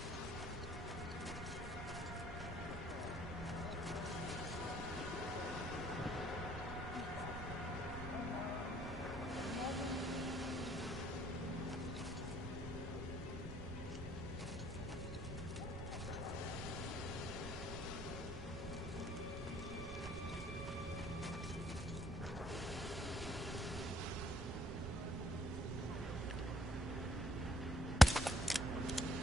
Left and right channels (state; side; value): noise; right; rumble, 8 dB below the sound